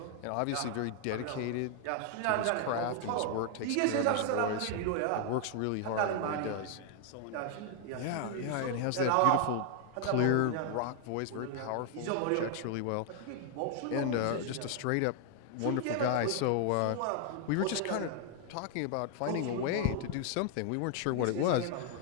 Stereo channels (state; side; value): different; both; correlation 0.00